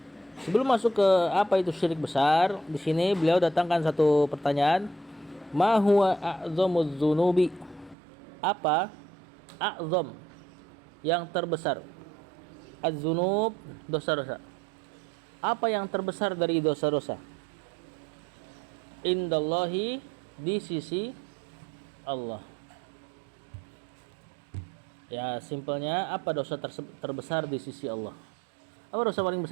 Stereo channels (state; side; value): drops out; left; at 8.0 s